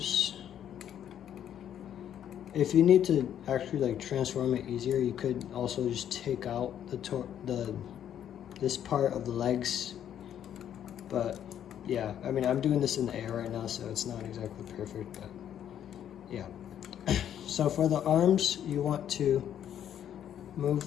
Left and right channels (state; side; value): quieter; right; 10.0 dB